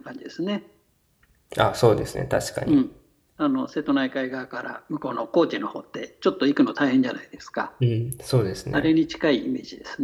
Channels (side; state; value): both; identical; correlation 1.00